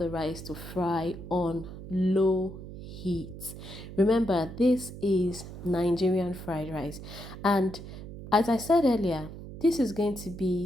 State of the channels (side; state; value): right; noise; hum, 12 dB below the sound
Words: rice to fry on low heat. Remember, this is Nigerian fried rice, and as I said earlier, this is going to